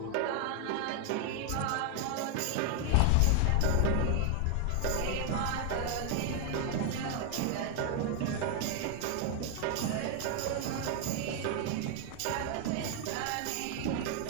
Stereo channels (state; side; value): different; both; correlation 0.00